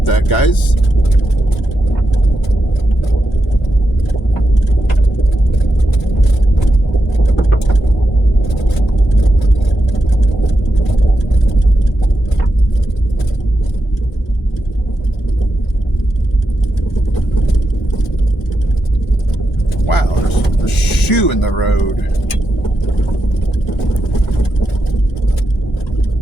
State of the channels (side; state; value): both; normal; correlation 0.87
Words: that, guys. Wow, there's a shoe in the road.